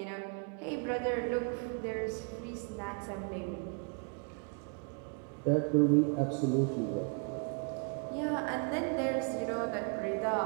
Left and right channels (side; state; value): left; quieter; 37.8 dB